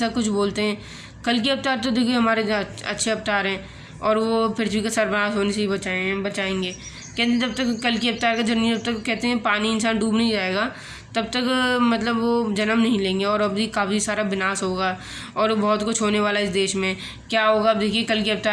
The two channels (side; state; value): both; identical; correlation 1.00